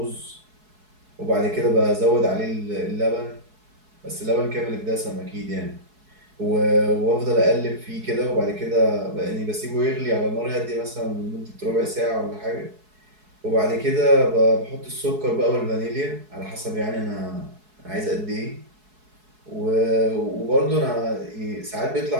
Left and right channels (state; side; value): late; left; 4.7 ms